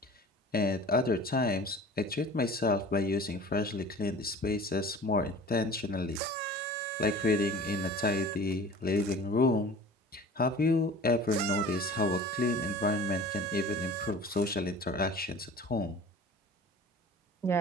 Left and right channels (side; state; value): both; normal; correlation 0.42